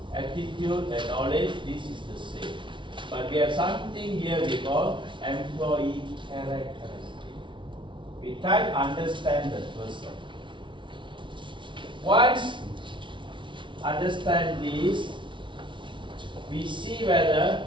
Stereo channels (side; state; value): left; late; 0.24 ms